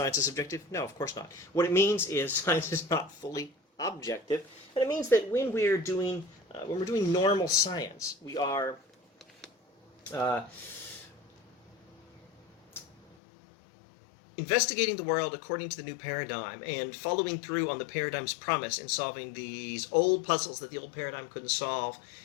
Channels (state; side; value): drops out; right; at 13.2 s